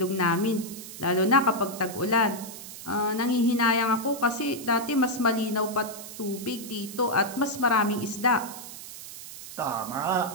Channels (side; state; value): right; noise; hiss, 12 dB below the sound